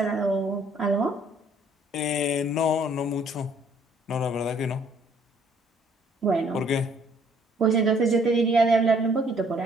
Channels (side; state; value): both; normal; correlation 0.62